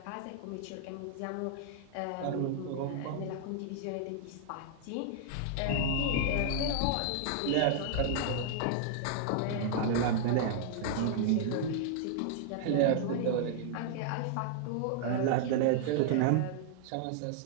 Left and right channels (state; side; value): different; both; correlation -0.01